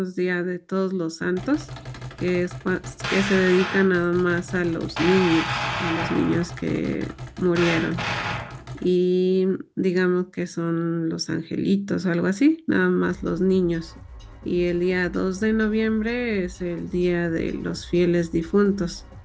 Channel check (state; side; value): identical; both; correlation 1.00